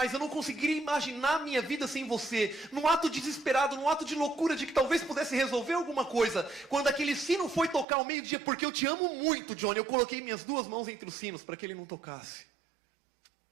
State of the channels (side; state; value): left; drops out; at 7.9 s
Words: eu não conseguiria imaginar a minha vida sem você. Num ato desesperado, num ato de loucura, de que talvez pudesse resolver alguma coisa. Quando aquele sino foi tocar ao meio-dia, porque eu te amo muito, Johnny, eu coloquei minhas 2 mãos entre os sinos para que ele não tocasse.